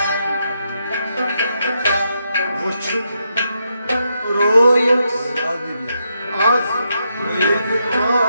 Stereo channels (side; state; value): both; inverted; correlation -0.82